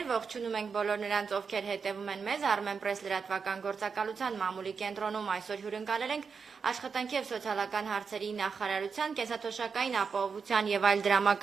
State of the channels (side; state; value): left; quieter; 5.6 dB